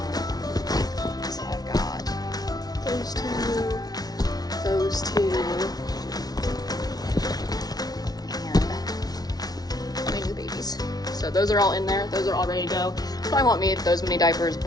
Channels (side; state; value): right; late; 0.19 ms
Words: So I've got those two, and my new babies. So those are all in there. Those are all ready to go. Probably won't need those many diapers,